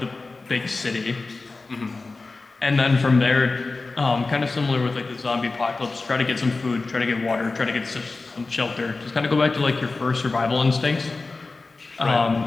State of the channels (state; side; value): quieter; right; 3.7 dB